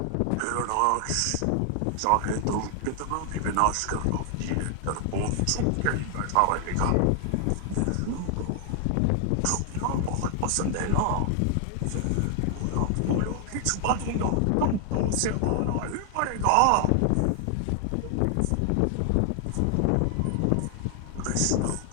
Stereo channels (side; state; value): both; different; correlation 0.00